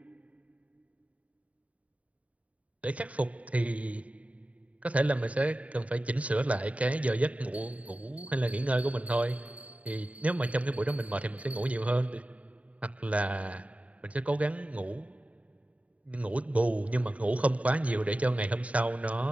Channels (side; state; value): left; late; 0.067 ms